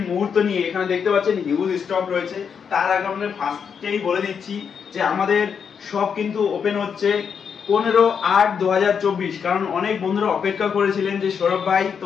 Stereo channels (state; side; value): quieter; right; 6.8 dB